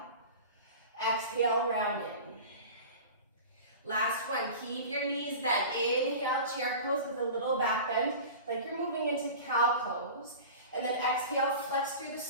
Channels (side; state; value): both; inverted; correlation -0.35